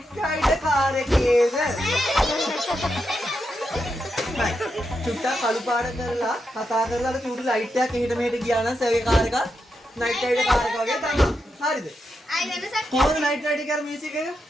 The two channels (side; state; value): both; normal; correlation 0.85